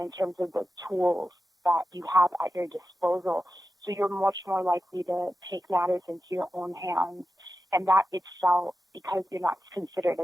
terms of the tools that you have at your disposal. So you're much more likely to take matters into your own hands. And that itself, because you're not considered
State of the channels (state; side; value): normal; both; correlation 0.92